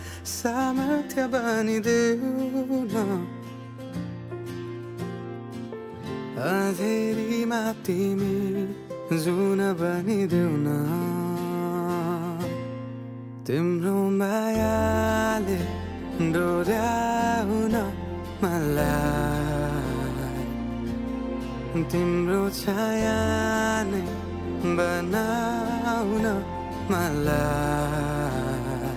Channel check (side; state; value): both; identical; correlation 1.00